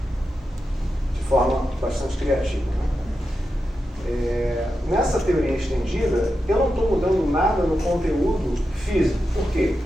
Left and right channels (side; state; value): both; normal; correlation 0.89